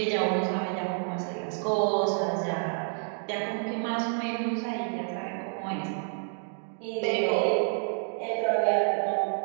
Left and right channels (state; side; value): silent; left; 59 dB below the other